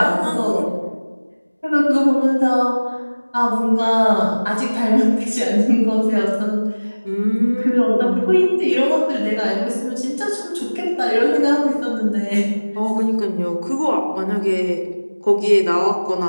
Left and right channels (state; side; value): inverted; both; correlation -1.00